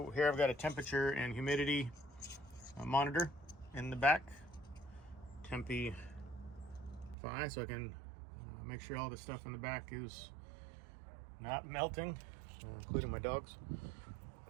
here I've got a temperature and humidity monitor in the back. Tempi 5, so I can make sure all the stuff in the back is not melting, including my dogs.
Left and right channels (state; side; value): drops out; left; at 7.2 s